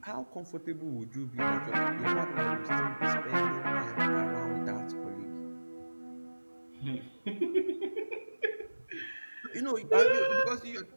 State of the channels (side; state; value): both; inverted; correlation -1.00